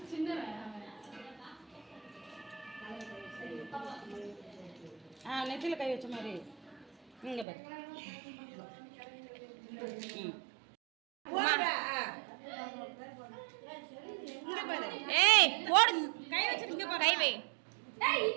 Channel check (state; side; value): drops out; left; at 7.5 s